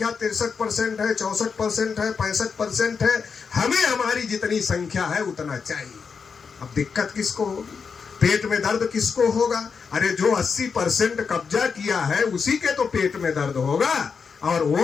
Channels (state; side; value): quieter; right; 5.7 dB